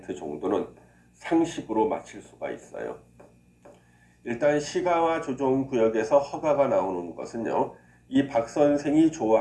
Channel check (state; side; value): identical; both; correlation 1.00